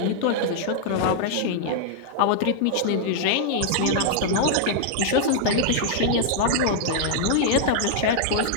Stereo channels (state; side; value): different; both; correlation -0.01